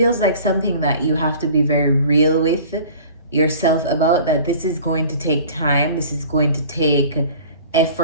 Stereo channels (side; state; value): both; inverted; correlation -0.45